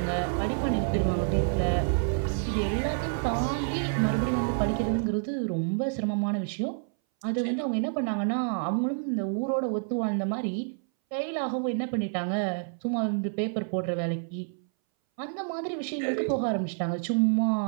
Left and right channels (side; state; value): left; silent; 59 dB below the other